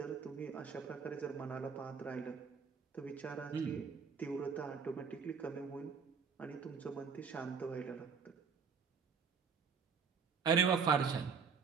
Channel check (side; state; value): left; quieter; 6.0 dB